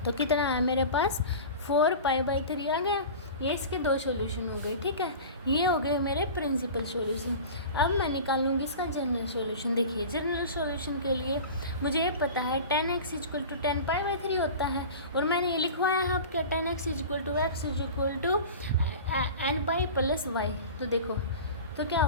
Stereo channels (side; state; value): both; inverted; correlation -0.35